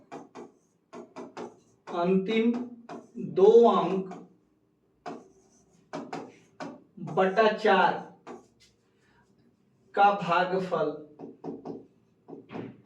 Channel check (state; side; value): identical; both; correlation 1.00